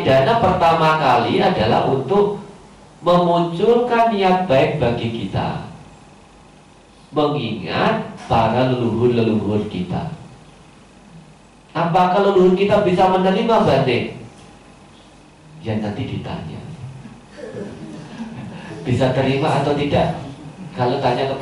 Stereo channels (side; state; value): both; identical; correlation 1.00